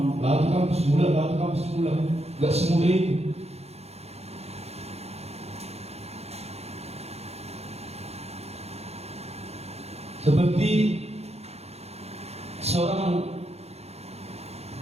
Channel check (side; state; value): left; late; 0.30 ms